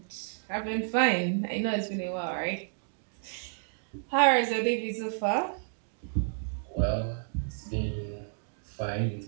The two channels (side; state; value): left; silent; digital silence